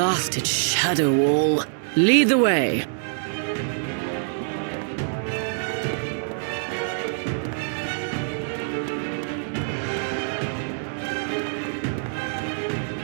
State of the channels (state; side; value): silent; left; digital silence